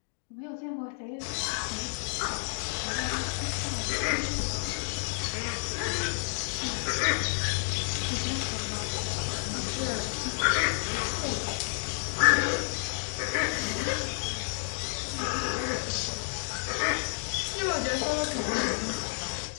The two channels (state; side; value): silent; right; digital silence